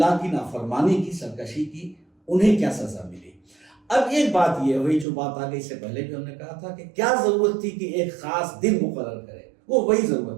کی نافرمانی کی، سرکشی کی، انہیں کیا سزا ملی۔ اب ایک بات یہ ہوئی جو بات آگے اس سے پہلے بھی ہم نے کہا تھا کہ کیا ضرورت تھی کہ ایک خاص دن مقرر کرے، وہ وہی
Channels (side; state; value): left; drops out; at 5.1 s